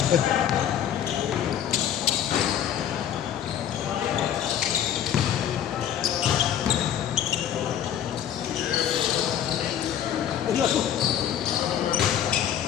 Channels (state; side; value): quieter; right; 10.0 dB